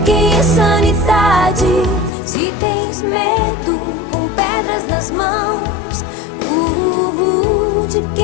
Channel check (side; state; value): right; drops out; at 2.1 s